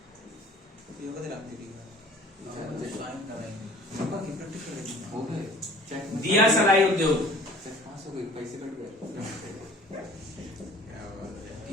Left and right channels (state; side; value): normal; both; correlation 0.48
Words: योगा दिला दी साइन करेंगे। नंबर की प्रैक्टिस करेंगे हो गए चेक दिया सलाई उद्योग, चेक पास हो गए पैसे कट गए क्या बात है